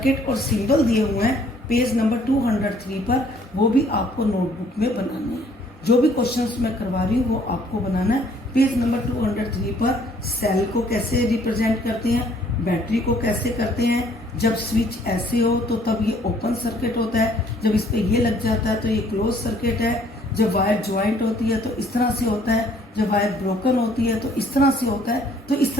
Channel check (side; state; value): both; normal; correlation 0.61